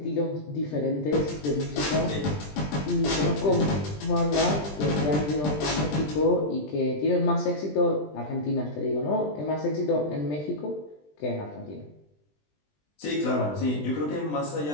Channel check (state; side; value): late; right; 20 ms